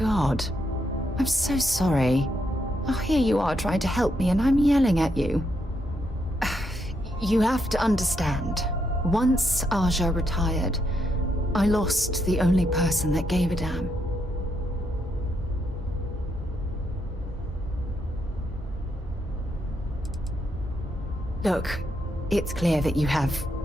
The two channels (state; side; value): normal; both; correlation 0.79